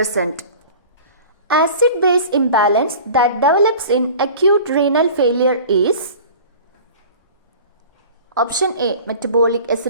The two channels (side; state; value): both; inverted; correlation -0.41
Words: Acid-base imbalance that develops in acute renal failure is option A. Metabolic